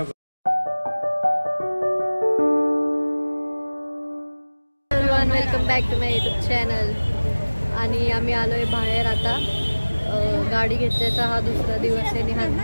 करतो. Welcome back to my YouTube channel. आणि आम्ही आलोय बाहेर आता. गाडी घेतल्याचा हा दुसरा दिवस आहे आणि हा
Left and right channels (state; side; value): inverted; both; correlation -1.00